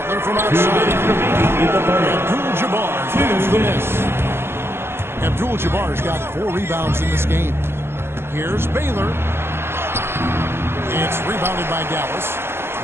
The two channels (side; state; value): left; late; 0.12 ms